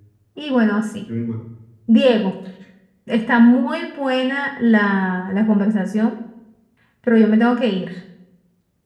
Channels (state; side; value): identical; both; correlation 1.00